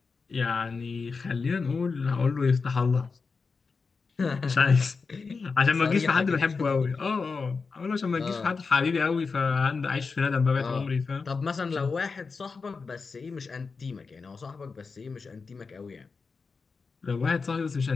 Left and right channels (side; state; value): right; quieter; 4.7 dB